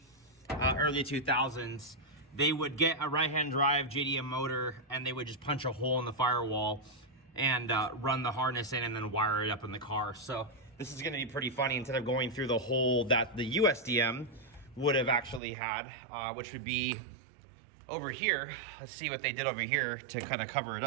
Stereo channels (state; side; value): drops out; left; at 15.4 s